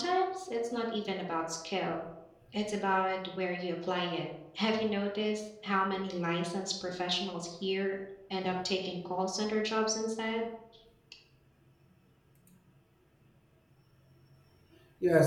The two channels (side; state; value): both; identical; correlation 1.00